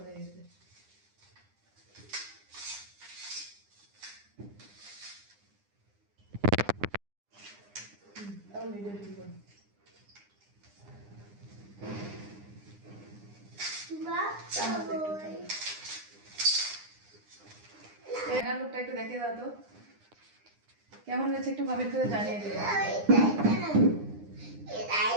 গেছে। লুকটা একটু দেখে দাও তো, কেমন হয়েছে একটু কমেন্ট করে জানিয়ে দিও।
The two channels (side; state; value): left; late; 9.8 ms